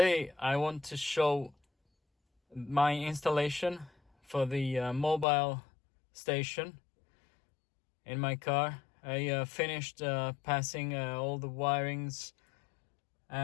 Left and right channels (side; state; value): right; drops out; at 5.2 s